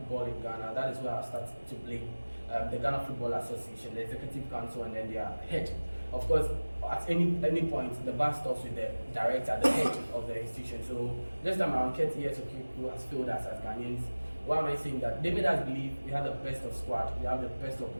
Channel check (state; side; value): inverted; both; correlation -1.00